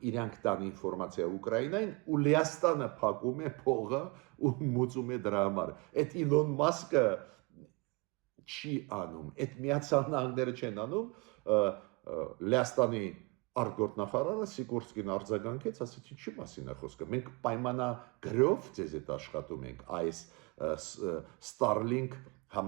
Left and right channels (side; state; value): left; quieter; 27.6 dB